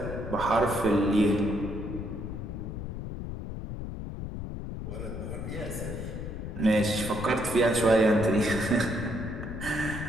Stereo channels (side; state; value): left; noise; rumble, 7 dB below the sound